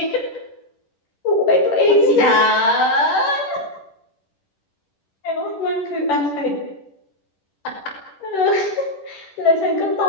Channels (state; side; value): late; right; 10 ms